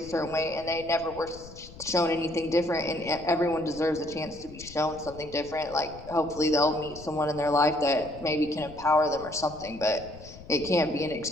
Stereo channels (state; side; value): noise; left; rumble, 17 dB below the sound